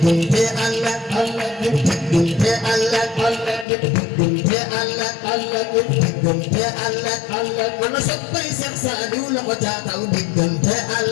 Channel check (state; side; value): drops out; right; at 3.7 s